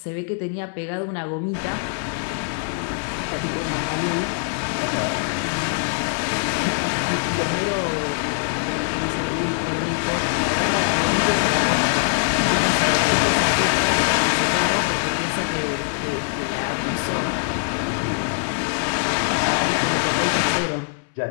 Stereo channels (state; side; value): silent; right; 64 dB below the other